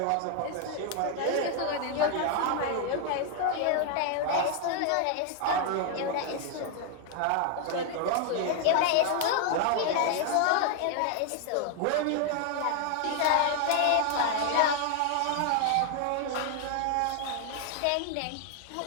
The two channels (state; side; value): different; both; correlation 0.00